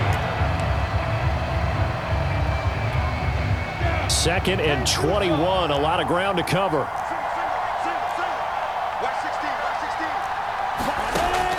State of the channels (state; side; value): identical; both; correlation 1.00